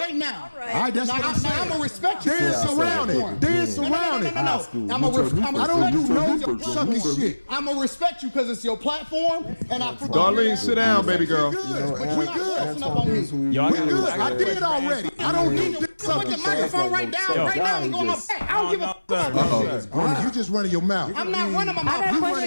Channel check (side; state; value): both; inverted; correlation -1.00